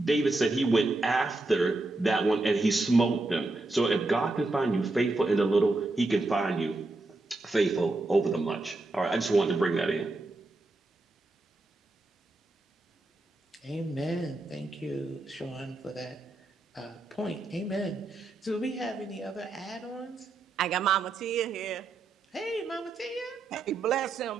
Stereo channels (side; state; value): left; quieter; 3.0 dB